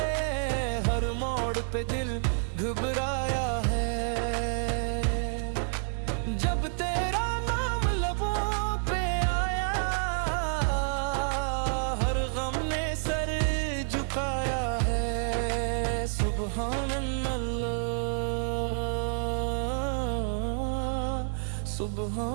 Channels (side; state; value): left; silent; 58 dB below the other